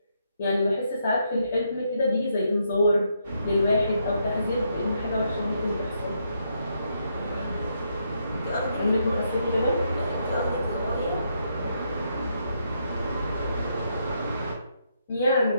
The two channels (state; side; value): inverted; both; correlation -0.77